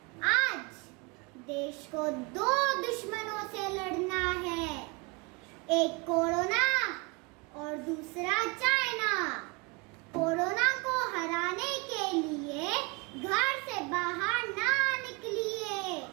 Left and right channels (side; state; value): left; quieter; 28.2 dB